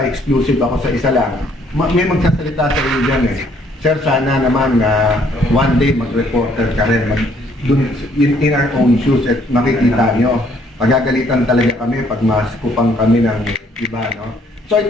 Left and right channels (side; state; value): both; normal; correlation 0.65